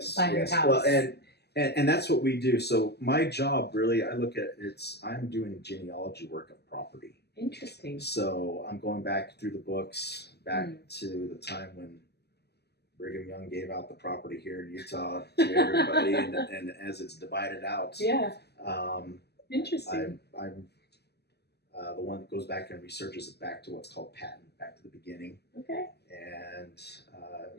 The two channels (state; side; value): late; right; 0.48 ms